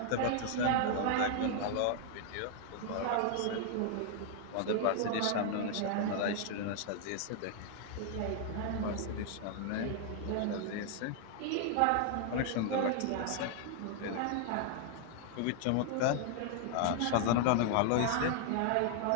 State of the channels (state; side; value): different; both; correlation 0.00